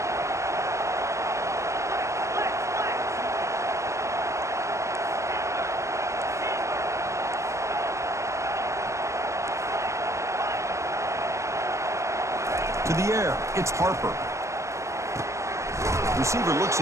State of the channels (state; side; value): late; left; 0.14 ms